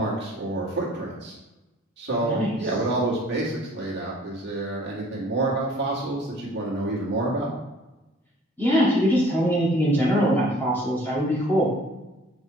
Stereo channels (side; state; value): both; normal; correlation 0.53